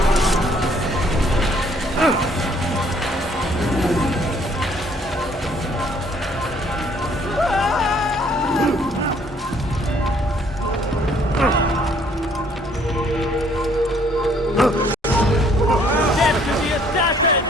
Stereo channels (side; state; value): both; normal; correlation 0.63